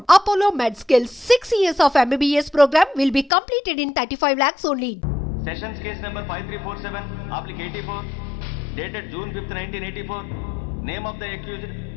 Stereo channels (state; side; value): drops out; right; at 3.3 s